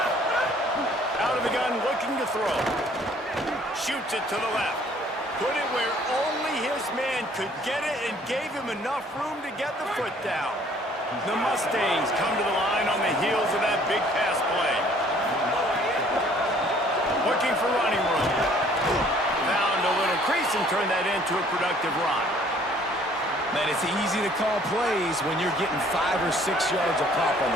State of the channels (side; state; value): both; normal; correlation 0.58